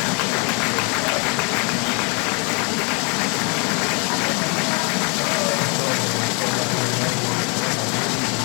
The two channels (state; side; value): quieter; right; 33.6 dB